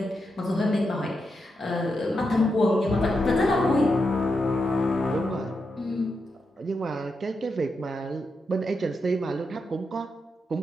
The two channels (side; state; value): both; normal; correlation 0.85